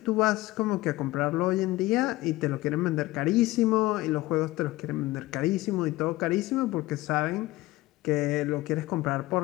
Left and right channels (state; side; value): quieter; right; 18.6 dB